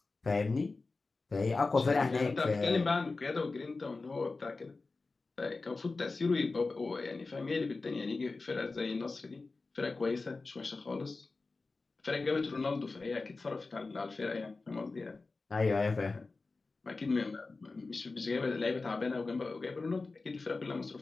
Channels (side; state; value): right; quieter; 3.7 dB